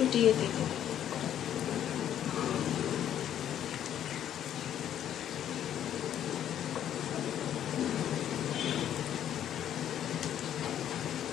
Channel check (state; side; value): quieter; right; 10.5 dB